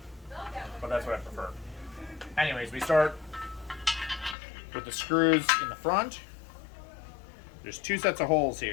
but that's what I prefer. Anyways, we start with the screws in the front. There's two sets of holes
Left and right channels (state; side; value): drops out; right; at 4.4 s